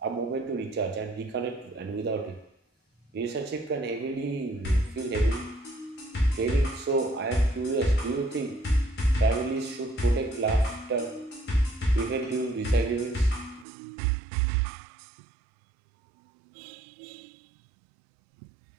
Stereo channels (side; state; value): left; drops out; at 13.7 s